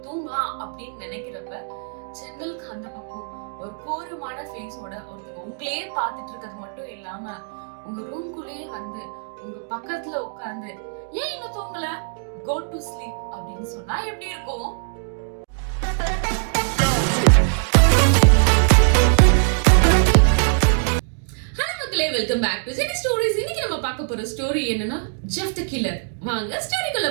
தூங்கலாம் அப்படின்னு நினைக்கிறப்ப ஜன்னலுக்கு அந்த பக்கம் ஒரு கோரமான ஃபேஸோட ஒருத்தங்க உங்களையே பார்த்துட்டு இருக்கிறது மட்டும் இல்லாம உங்க ரூம்குள்ளேயே உங்க பக்கத்துல உட்கார்ந்து, ஏன் இன்னும் தூங்கல, கோ டு ஸ்லீப் அப்படின்னு சொன்னா எப்படி இருக்கும்? Welcome back to Jenny stories. இன்னைக்கு நம்ம பார்க்க போற ஸ்டோரி என்னன்னா ஜெஃப் தி கில்லர். வாங்க ஸ்டோரிக்குள்ள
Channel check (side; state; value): left; silent; 64 dB below the other